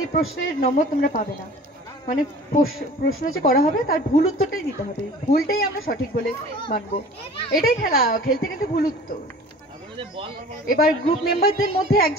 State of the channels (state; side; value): normal; both; correlation 0.44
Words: প্রশ্নের নম্বর তোমরা পাবে না। মানে প্রশ্ন যে করা হবে তার ভুল উত্তরটাই দিতে হবে, ভুলটাই আমরা সঠিক বলে মানবো। এটাই খেলা, খেলতে খেলতে ভুল উত্তর। এবার গ্রুপ মেম্বারদের মধ্যে